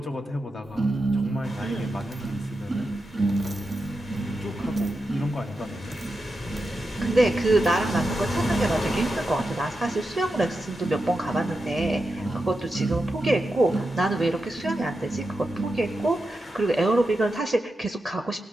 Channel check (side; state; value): both; normal; correlation 0.89